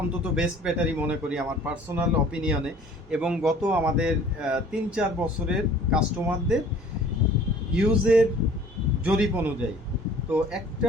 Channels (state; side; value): normal; both; correlation 0.51